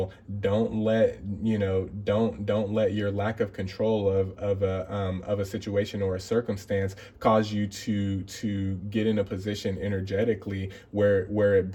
Don't let your lack of control of a situation or a circumstance cause you to get in a position energetically where it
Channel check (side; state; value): both; identical; correlation 1.00